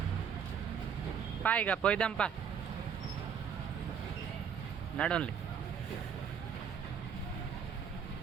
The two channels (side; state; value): left; quieter; 7.3 dB